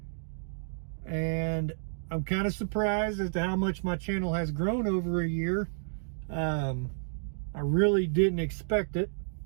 And I'm kind of surprised as to how much my channel has grown over a year. I really didn't expect it.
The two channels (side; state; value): left; silent; digital silence